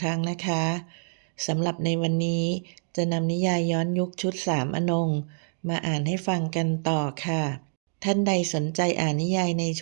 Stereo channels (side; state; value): left; silent; digital silence